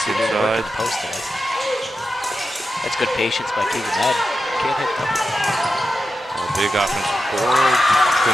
He didn't inside. work at the post tonight. That's good patience by Keegan Madden. Can't hit them. A big offensive board.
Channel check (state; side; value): normal; both; correlation 0.90